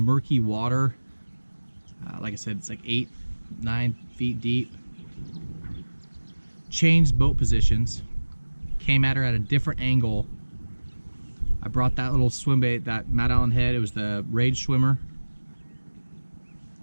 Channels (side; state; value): both; inverted; correlation -1.00